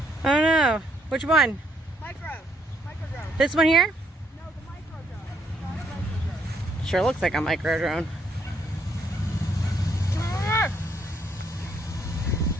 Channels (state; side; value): normal; both; correlation 0.72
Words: Oh no. Which one? Micro drone. This one here? No, the micro drone. Not the micro drone. Sure looks like a micro drone.